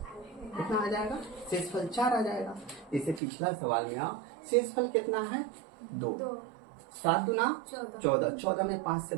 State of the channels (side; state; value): left; drops out; at 3.2 s